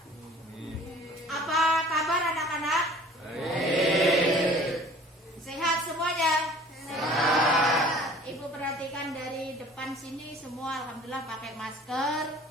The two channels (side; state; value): both; normal; correlation 0.49